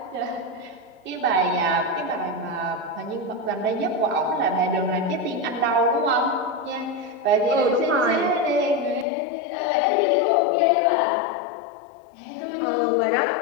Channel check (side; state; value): right; drops out; at 9.1 s